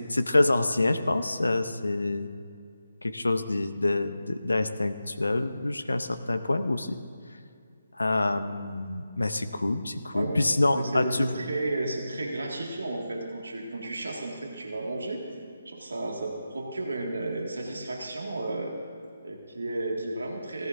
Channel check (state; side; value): inverted; both; correlation -0.92